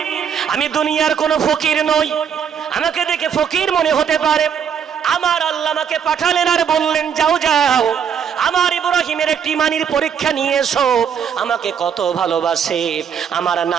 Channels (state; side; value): quieter; left; 7.7 dB